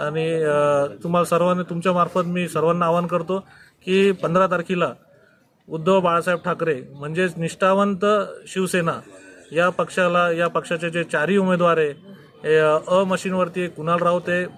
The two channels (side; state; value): both; identical; correlation 1.00